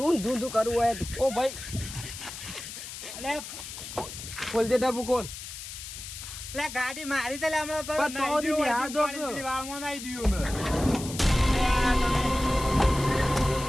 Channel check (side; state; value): left; noise; hiss, 10 dB below the sound